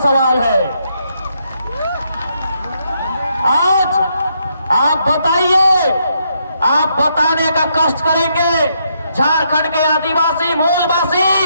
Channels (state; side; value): inverted; both; correlation -0.77